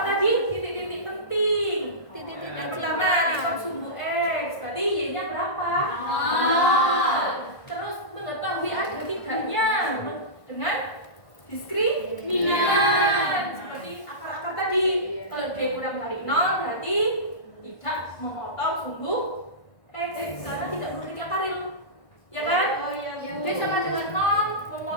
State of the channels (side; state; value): right; late; 1.4 ms